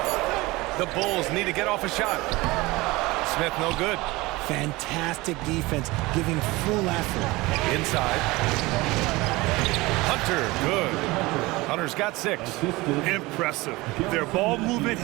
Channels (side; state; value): left; quieter; 21.5 dB